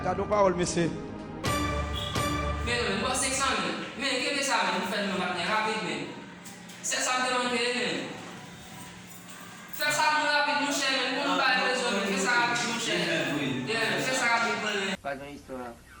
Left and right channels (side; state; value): both; identical; correlation 1.00